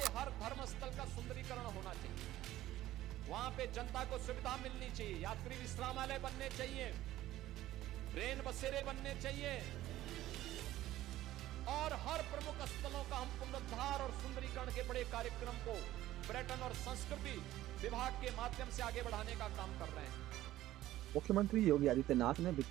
हर धर्म स्थल का सुंदरीकरण होना चाहिए, वहां पे जनता को सुविधा मिलनी चाहिए, यात्री विश्रामालय बनने चाहिए, रेल बसेरे बनने चाहिए, और हर प्रमुख स्थलों का हम पुनरुद्धार और सुंदरीकरण के बड़े कार्यक्रम को पर्यटन और संस्कृति विभाग के माध्यम से आगे बढ़ाने का काम कर रहे हैं। मुख्यमंत्री योगी आदित्यनाथ ने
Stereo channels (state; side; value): quieter; left; 14.7 dB